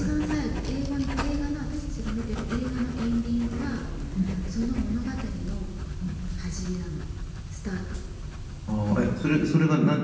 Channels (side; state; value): both; identical; correlation 1.00